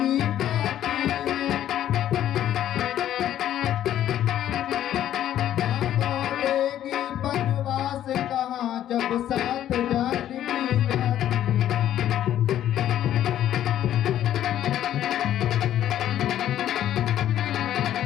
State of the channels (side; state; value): right; quieter; 11.6 dB